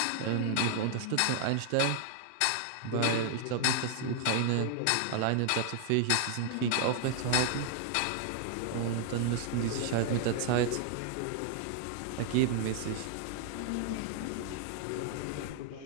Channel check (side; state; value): both; different; correlation 0.00